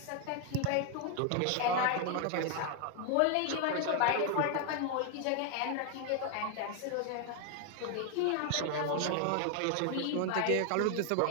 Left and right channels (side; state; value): both; different; correlation 0.01